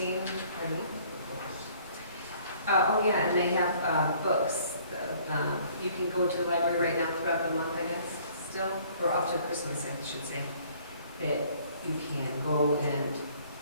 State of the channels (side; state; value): both; inverted; correlation -0.58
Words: Pardon me? Oh yeah, and they have books. You can go to the library right now throughout the month, I guess, still, or up to Christmas, I should say, that you can go and